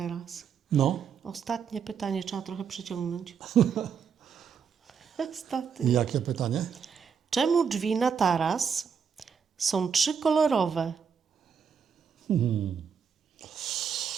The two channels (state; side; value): quieter; left; 6.8 dB